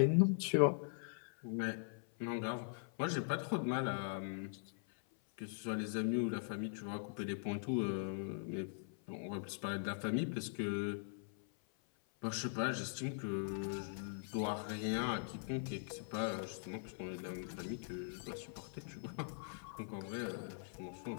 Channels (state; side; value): silent; right; 50 dB below the other